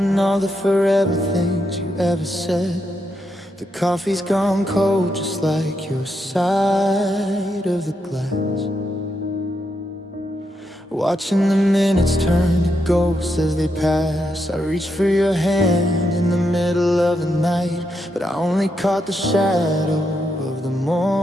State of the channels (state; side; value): normal; both; correlation 0.82